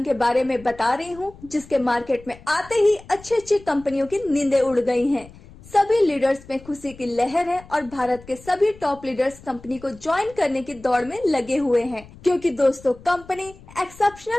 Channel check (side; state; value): left; noise; rumble, 21 dB below the sound